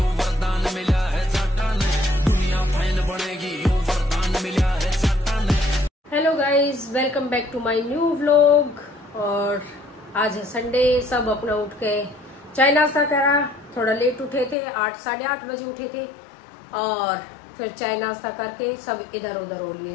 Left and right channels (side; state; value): right; drops out; at 14.6 s